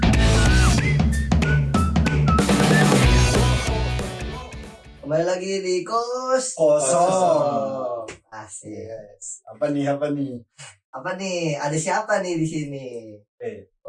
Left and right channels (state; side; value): identical; both; correlation 1.00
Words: Kembali lagi di kos Kosong. Asik. Yes. Apa nih? Apa nih? Ada siapa nih di sini?